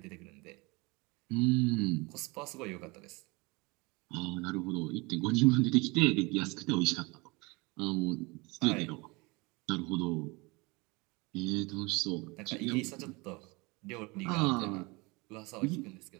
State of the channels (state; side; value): quieter; left; 26.0 dB